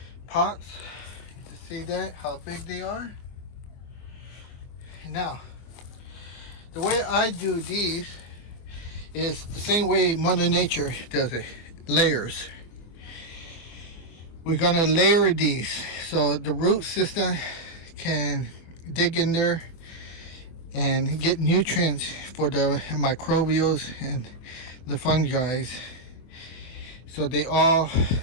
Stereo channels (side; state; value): right; late; 24 ms